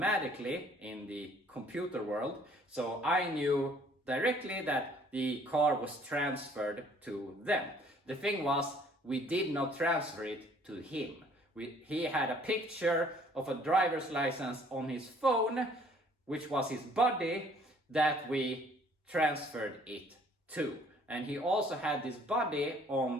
in the computer world. So I knew directly that the car was transferred to them. The thing was, we did not transfer it to him. He had a picture of a driver's license on his phone, which was his buddy, that we transferred it to. And he also had this buddy on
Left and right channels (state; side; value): normal; both; correlation 0.59